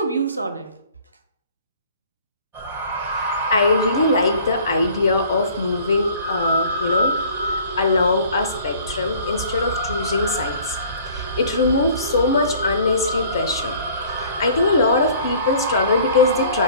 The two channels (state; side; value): inverted; both; correlation -0.51